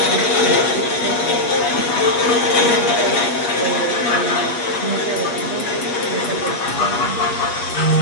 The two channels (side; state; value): right; late; 8.3 ms